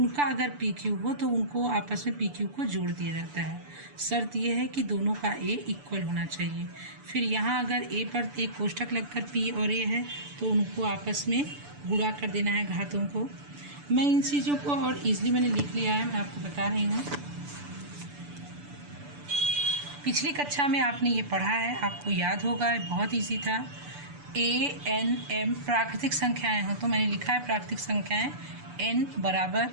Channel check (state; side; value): late; left; 6.9 ms